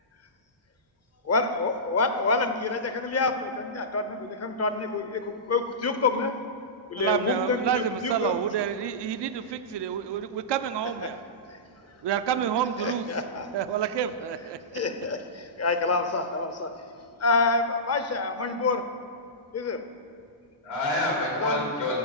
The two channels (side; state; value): both; normal; correlation -0.17